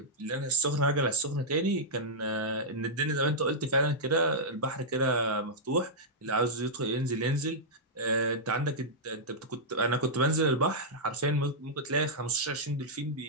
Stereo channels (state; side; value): normal; both; correlation -0.09